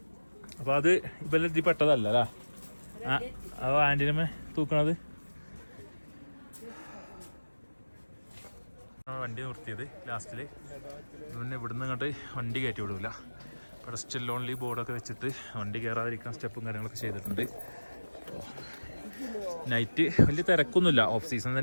അപ്പോൾ അത് ഇപ്പം ഇതിൽ പെട്ടതല്ല അല്ലേ? അത് ആൻറ്റിനമ്മ തൂക്കണത്. വണ്ടി നിർത്തിയത് ലാസ്റ്റിൽ. പിന്നെ ഇവിടുന്ന് ഇങ്ങോട്ട് വണ്ടി കയറ്റി വിടില്ല. ഇവിടെ സ്റ്റിൽ ഓൺലി ബോർഡൊക്കെ വെച്ചിട്ട് വണ്ടി കയറാതിരിക്കാൻ സ്റ്റെപ്പും കാര്യങ്ങളൊക്കെ ചെയ്തിട്ടുണ്ട്. നൈറ്റ് വലിയ തിരക്കൊന്നുമില്ല. ഓഫ് സീസൺ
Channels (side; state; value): both; inverted; correlation -1.00